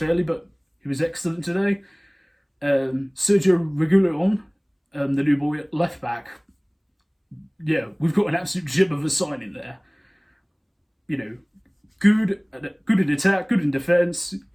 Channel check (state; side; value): identical; both; correlation 1.00